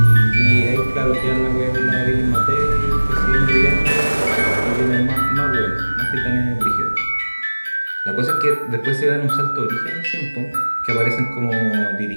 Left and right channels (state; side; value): inverted; both; correlation -1.00